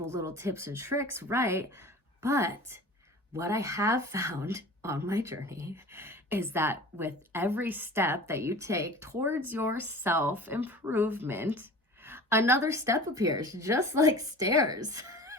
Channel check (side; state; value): both; normal; correlation 0.39